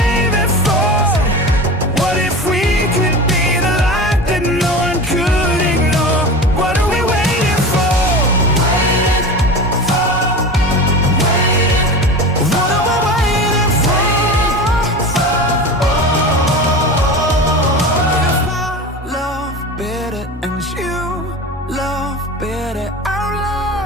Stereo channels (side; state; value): both; normal; correlation 0.31